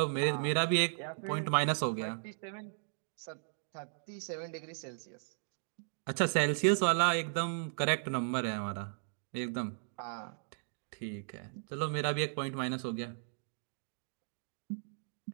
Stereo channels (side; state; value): left; silent; digital silence